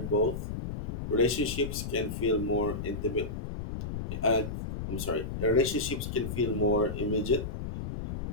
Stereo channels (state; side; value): noise; left; rumble, 5 dB below the sound